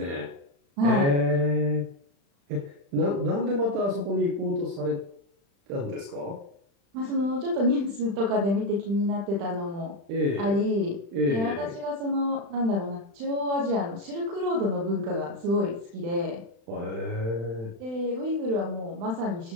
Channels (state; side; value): late; left; 35 ms